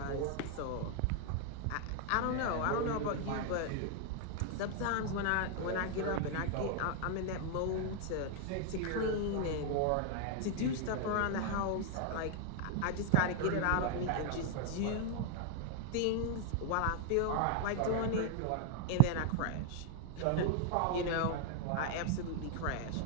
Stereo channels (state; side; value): different; both; correlation 0.00